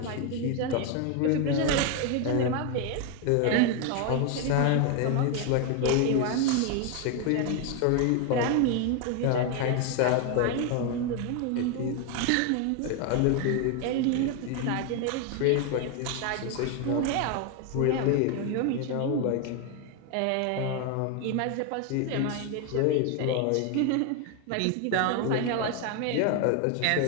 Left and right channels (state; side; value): different; both; correlation 0.01